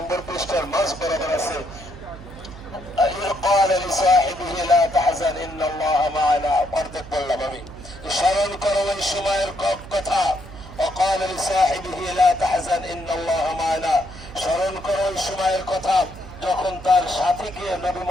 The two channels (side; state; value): right; noise; hum, 16 dB below the sound